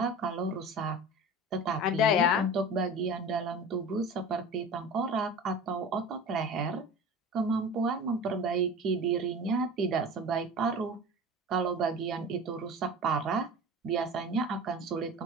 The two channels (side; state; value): both; normal; correlation 0.35